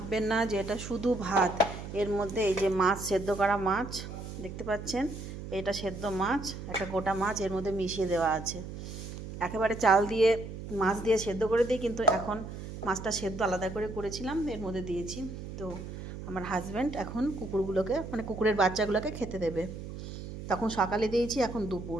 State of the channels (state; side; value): noise; right; hum, 9 dB below the sound